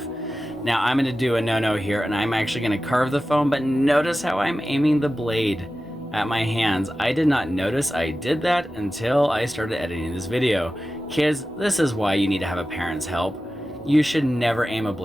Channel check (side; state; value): both; normal; correlation 0.94